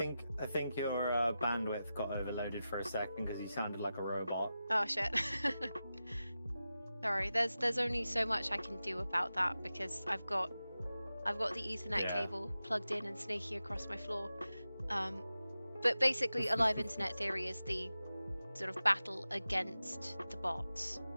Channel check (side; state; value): both; inverted; correlation -0.93